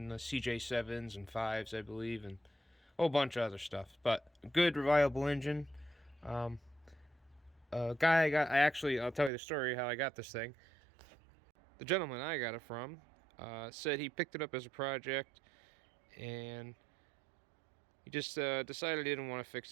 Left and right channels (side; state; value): left; drops out; at 9.3 s